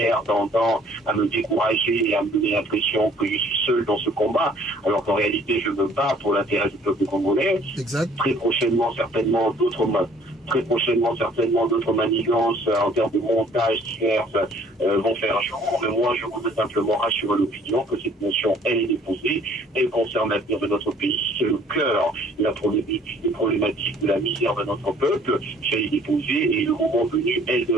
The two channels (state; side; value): normal; both; correlation 0.57